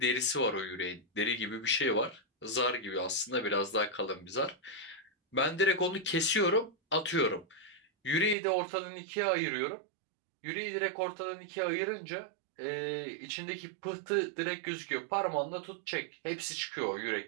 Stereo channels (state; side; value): drops out; left; at 8.3 s